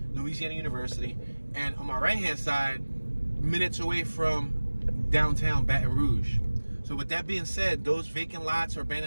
Louisiana University. And on my right-hand side, minutes away from downtown Baton Rouge. So with that being said, those vacant lots or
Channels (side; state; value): both; inverted; correlation -1.00